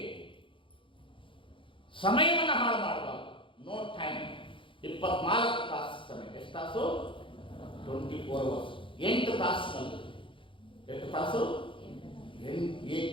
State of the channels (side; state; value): right; late; 0.25 ms